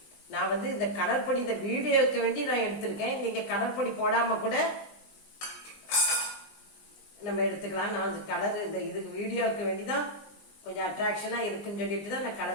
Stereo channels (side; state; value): right; late; 20 ms